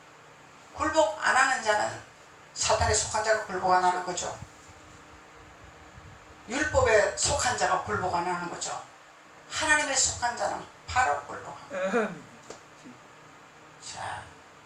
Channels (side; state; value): both; identical; correlation 1.00